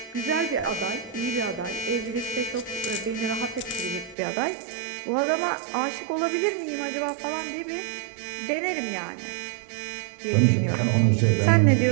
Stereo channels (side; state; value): left; drops out; at 4.2 s